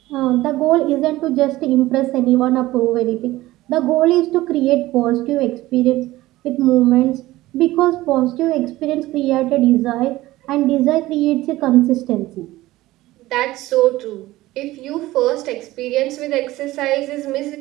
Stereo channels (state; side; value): quieter; left; 17.3 dB